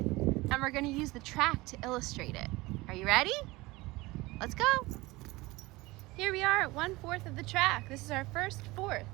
and we're going to use the track to illustrate it. Are you ready? Let's go. Here we are at 1/4 of the track. This is our first 4th.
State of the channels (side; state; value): left; quieter; 21.2 dB